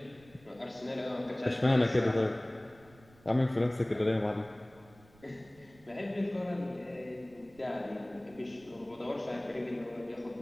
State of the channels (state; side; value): noise; right; rumble, 26 dB below the sound